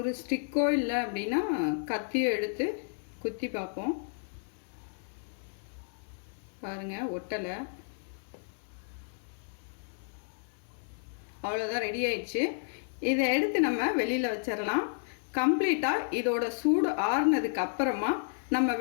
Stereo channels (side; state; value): right; silent; 57 dB below the other